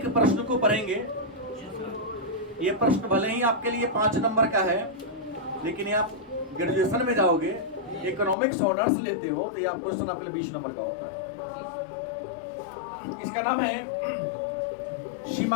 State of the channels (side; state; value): right; drops out; at 8.3 s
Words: प्रश्न को पढ़ेंगे। ये प्रश्न भले ही आपके लिए 5 नंबर का है, लेकिन ये आप ग्रेजुएशन में जाओगे, इकोनॉमिक्स ऑनर्स लेते हो, तो ये आप क्वेश्चन आपके लिए 20 नंबर का होता है। इसका नाम है